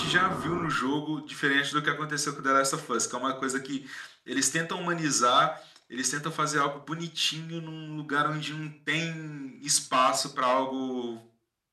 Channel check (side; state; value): both; identical; correlation 1.00